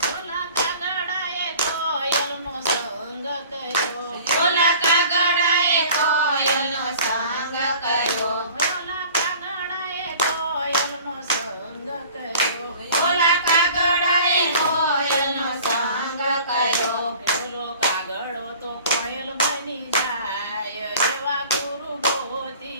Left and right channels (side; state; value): both; inverted; correlation -0.47